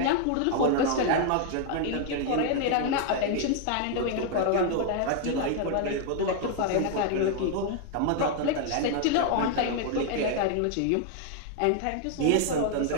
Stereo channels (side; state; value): both; different; correlation 0.00